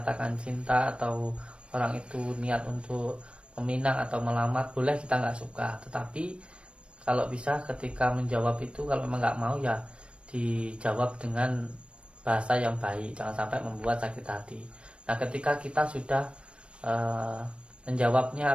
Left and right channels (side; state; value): left; late; 0.059 ms